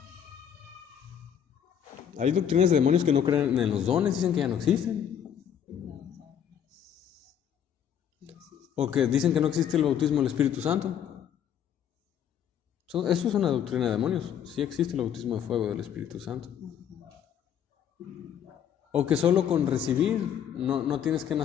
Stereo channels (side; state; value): right; quieter; 9.0 dB